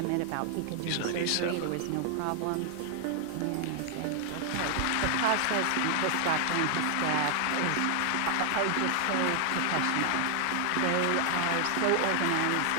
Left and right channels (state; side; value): different; both; correlation 0.00